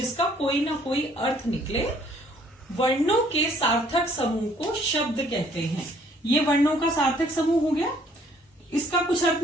कोई ना कोई अर्थ निकले, वर्णों के सार्थक समूह को शब्द कहते हैं। ये वर्णों का सार्थक समूह हो गया, इसका कुछ अर्थ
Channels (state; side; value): normal; both; correlation 0.61